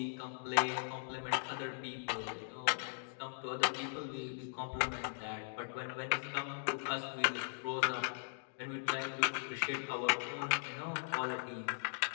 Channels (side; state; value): right; silent; digital silence